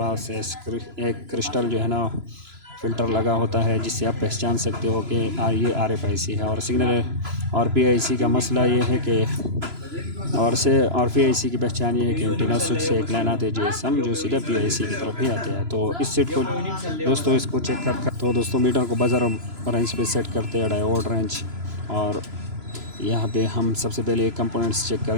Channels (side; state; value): left; late; 3.0 ms